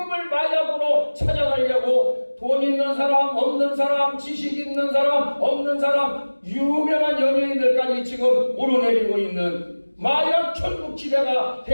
마약으로 찾아가려고 돈 있는 사람, 없는 사람, 지식 있는 사람, 없는 사람, 유명한 연예인들까지 지금 오르내리고 있는 마약 천국지대가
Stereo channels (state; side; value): inverted; both; correlation -1.00